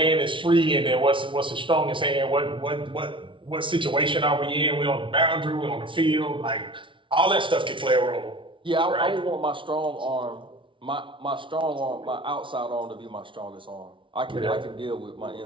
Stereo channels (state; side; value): late; left; 0.25 ms